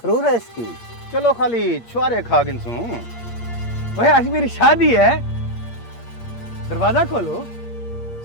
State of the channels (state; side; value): late; right; 8.6 ms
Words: है इसकी। चलो खाली छुआरे खा गिनसू। ओए आज मेरी शादी है, दरवाजा खोलो।